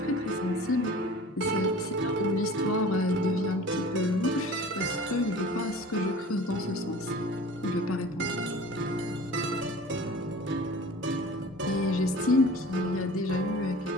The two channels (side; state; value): both; normal; correlation 0.42